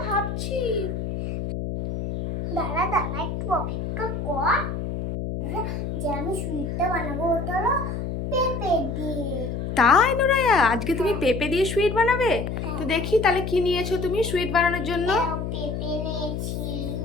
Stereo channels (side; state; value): left; noise; hum, 4 dB below the sound